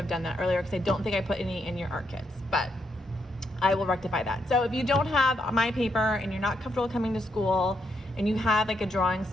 done that earlier because I don't think I put any in your art kits, but I will rectify that. So if you don't have my paper and you're not comfortable coming to school and you have like a drawing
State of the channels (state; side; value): normal; both; correlation 0.79